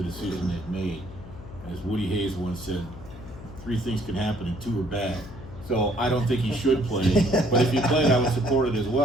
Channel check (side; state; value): left; noise; hum, 15 dB below the sound